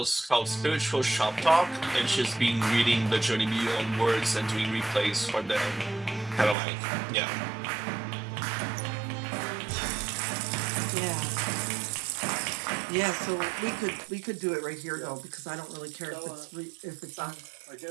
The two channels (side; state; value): left; drops out; at 6.6 s